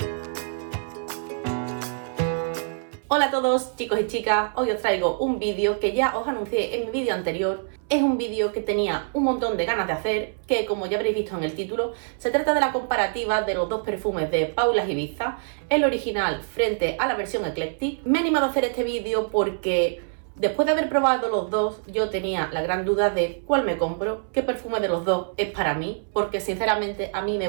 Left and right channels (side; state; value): left; silent; 62 dB below the other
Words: Hola a todos chicos y chicas, hoy os traigo un vídeo que ya os anuncié en mi vídeo anterior. Es un vídeo que tenía un montón de ganas de hacer, que como ya habréis visto en el título, se trata de la comparativa de los dos perfumes de Paula Ibiza, el original frente a la versión Eclectic. Me he animado a hacer este vídeo porque después de haber probado los dos, yo tenía la gran duda de cuál me compro, qué perfume de los dos es para mí, porque sinceramente a mí me